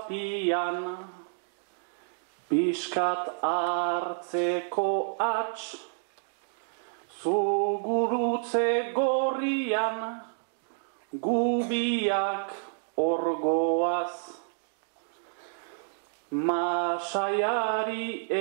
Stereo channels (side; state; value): left; silent; digital silence